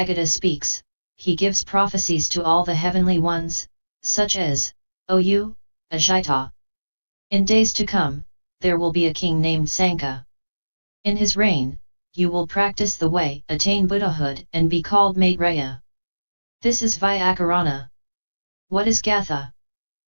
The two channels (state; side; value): inverted; both; correlation -1.00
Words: speaks, he gives prophecies to all the heavenly ones, such as, "O you, Ajita! In days to come, there will be a king named Sanka. In his reign, you will practice the way, attain Buddhahood and be called Maitreya." This is vyakarana. What is gatha?